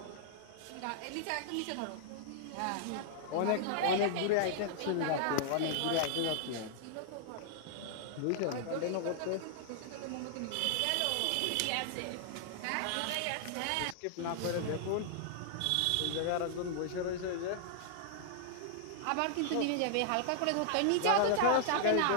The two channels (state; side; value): different; both; correlation -0.01